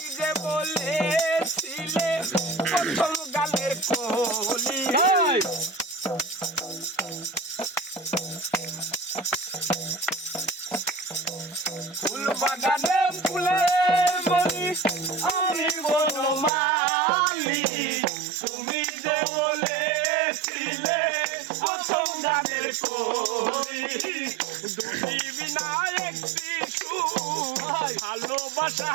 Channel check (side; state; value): left; drops out; at 16.5 s